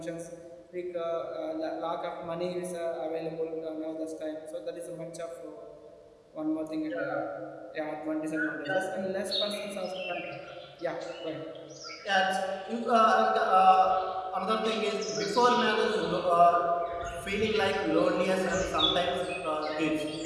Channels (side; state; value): both; identical; correlation 1.00